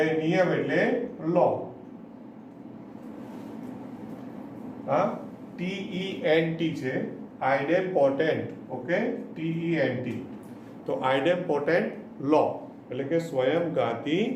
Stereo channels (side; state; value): both; identical; correlation 1.00